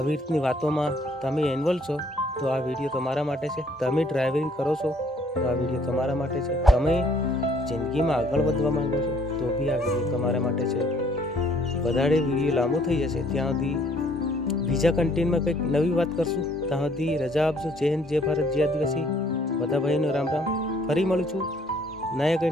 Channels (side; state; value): both; normal; correlation 0.62